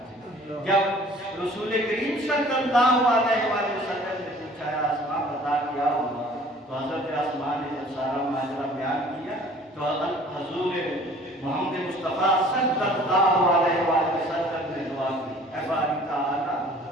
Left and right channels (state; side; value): normal; both; correlation 0.51